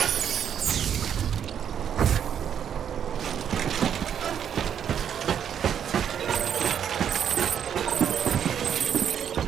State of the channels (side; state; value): left; quieter; 8.7 dB